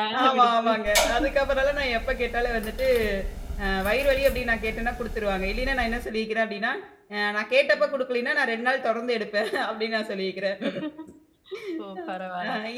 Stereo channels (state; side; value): identical; both; correlation 1.00